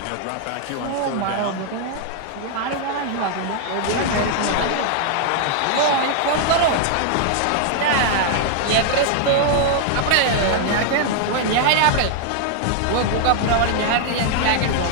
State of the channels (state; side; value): different; both; correlation 0.00